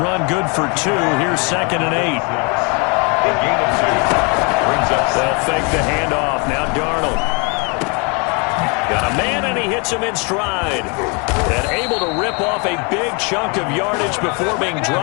good for 2. Here's 2nd and 8. They'll fake the handoff. Now Darnold. Got a man, and he hits him in stride. And able to rip off a big chunk of yardage before being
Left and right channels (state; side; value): quieter; right; 32.9 dB